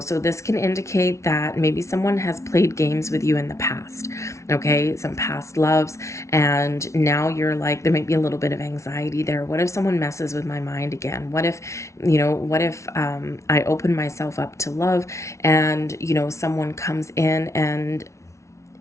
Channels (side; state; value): right; late; 0.14 ms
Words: this can indicate that maybe someone has played games with you in the past, okay? Some past loves, and now you're like, there might be a little bit of anxiety there. What if someone messes with my mind again? What if I open myself up to love, and someone comes in and